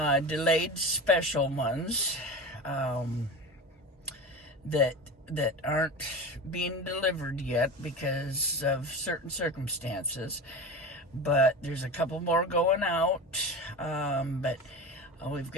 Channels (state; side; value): normal; both; correlation 0.29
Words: special ones that aren't being delivered yet because of certain circumstances. But there's a couple more going out. But we've